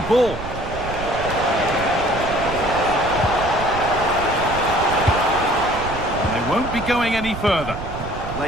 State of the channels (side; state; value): right; noise; rumble, 9 dB below the sound